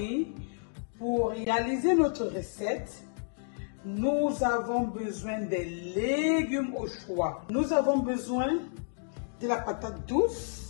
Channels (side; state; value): right; silent; digital silence